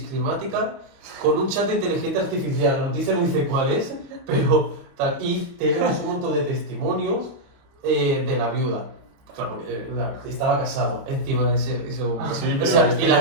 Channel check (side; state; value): left; late; 30 ms